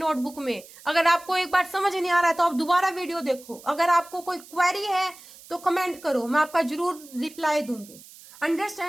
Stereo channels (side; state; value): right; noise; hiss, 20 dB below the sound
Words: में, अगर आपको एक बार समझ नहीं आ रहा है तो आप दोबारा वीडियो देखो। अगर आपको कोई क्वेरी है तो कमेंट करो, मैं आपका जरूर रिप्लाई दूंगी।